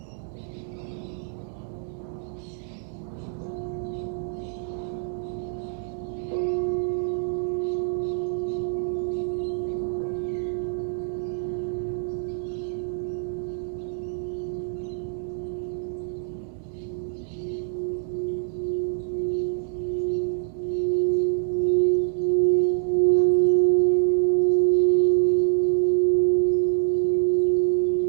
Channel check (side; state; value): left; silent; 61 dB below the other